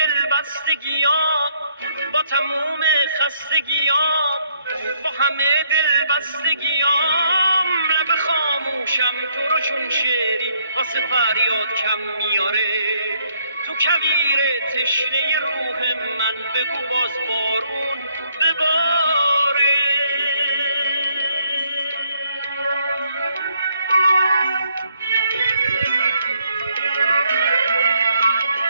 با تموم خستگیام، با همه دلبستگیام، لب خاموشم تو رو چون شعری واسه فریاد کم میاره. تو کویر تشنه روح من بگو باز بارون بباره.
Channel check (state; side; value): inverted; both; correlation -0.69